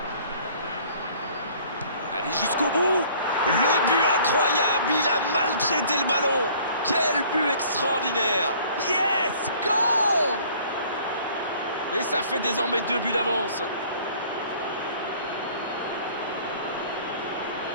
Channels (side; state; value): both; inverted; correlation -0.53